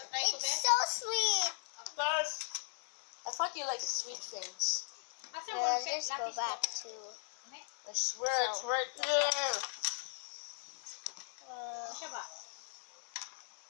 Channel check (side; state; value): right; silent; digital silence